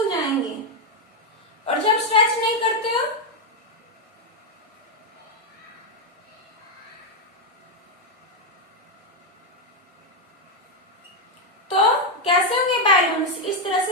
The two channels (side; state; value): both; normal; correlation 0.02